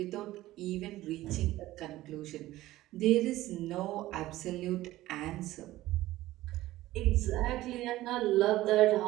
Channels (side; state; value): left; quieter; 16.3 dB